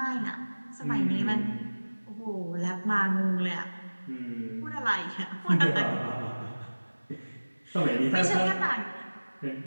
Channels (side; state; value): both; inverted; correlation -1.00